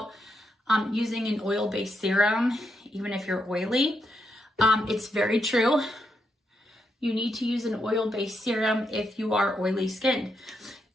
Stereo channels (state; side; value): normal; both; correlation 0.81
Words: using an oil-based serum, even if you're oily. It's very true. You need to use an oil-based serum if you are oily skinned.